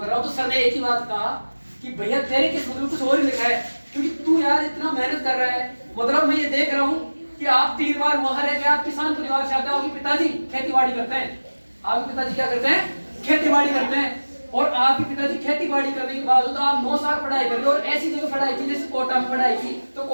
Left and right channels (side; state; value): both; inverted; correlation -1.00